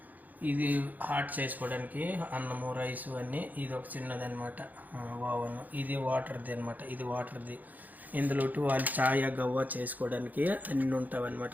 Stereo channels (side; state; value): left; late; 0.082 ms